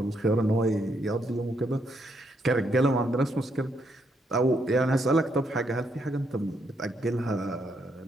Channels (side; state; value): both; normal; correlation 0.76